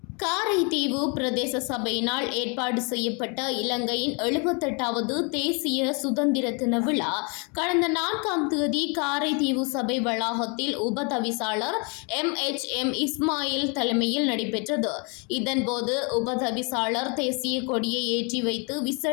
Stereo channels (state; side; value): quieter; right; 33.7 dB